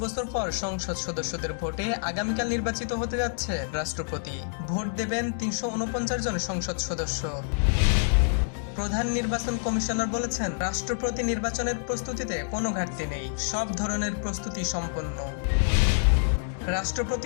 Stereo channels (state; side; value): silent; right; digital silence